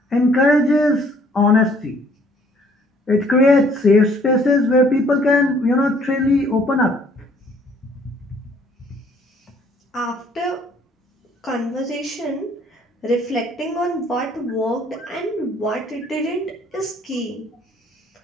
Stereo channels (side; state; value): both; normal; correlation 0.60